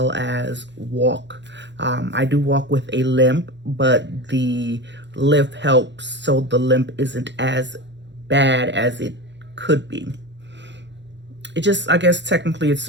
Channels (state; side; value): late; left; 0.52 ms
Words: as walk. I do walk with a limp, but the lift helps so the limp isn't as bad as it could be. It just, I guess technically it's